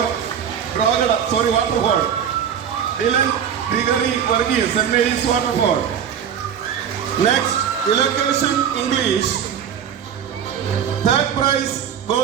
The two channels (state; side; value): quieter; left; 8.5 dB